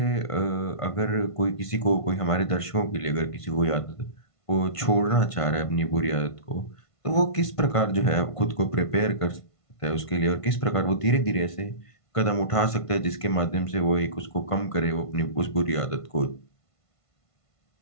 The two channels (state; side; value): late; right; 1.5 ms